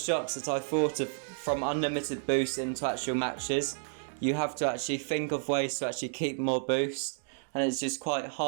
that I thought of from unlimited boost into actual matches, you have to actually think of ways to actually keep more boost, and it's just quite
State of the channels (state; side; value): silent; left; digital silence